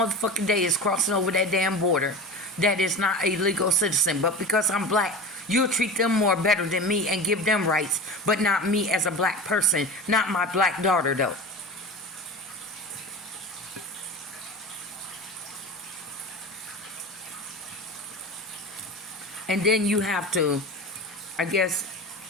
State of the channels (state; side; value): normal; both; correlation 0.30